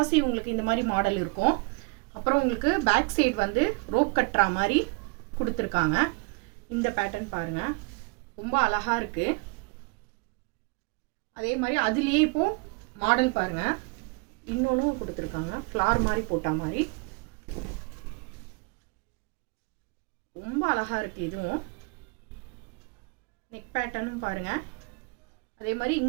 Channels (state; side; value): quieter; left; 30.1 dB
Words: உங்களுக்கு இந்த மாதிரி மாடல் இருக்கும். அப்புறம் உங்களுக்கு பேக் சைடு வந்து ரோப் கட்டற மாதிரி கொடுத்திருக்காங்க. இந்த பேட்டர்ன் பாருங்க, ரொம்ப அழகா இருக்கு. அதே மாதிரி அதுலயே இப்போ மாடல் பாருங்க, இன்னொன்னு கொடுத்திருக்காங்க. ஃப்ளார் மாதிரி போட்ட மாதிரி ரொம்ப அழகா இருக்கு. இதுவும் நெக் பேட்டர்னும் பாருங்க. அதே மாதிரி